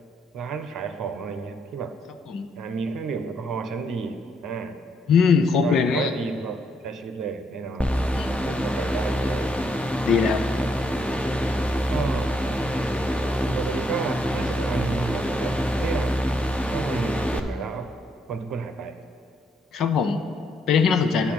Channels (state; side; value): normal; both; correlation 0.74